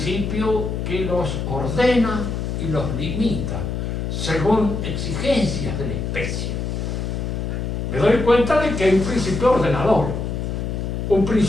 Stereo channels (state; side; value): noise; left; hum, 3 dB below the sound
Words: que los ordena y los limita según exigencias de la especie, me doy cuenta de que hay un principio ordenador, un